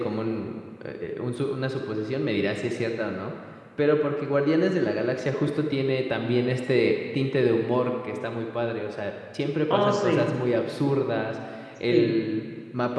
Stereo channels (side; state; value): both; identical; correlation 1.00